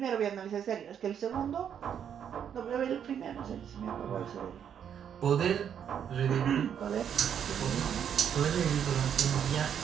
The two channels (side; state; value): left; quieter; 8.5 dB